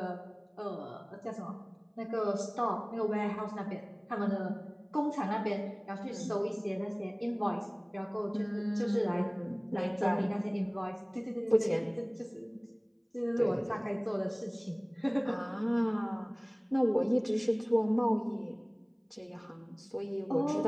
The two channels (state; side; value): identical; both; correlation 1.00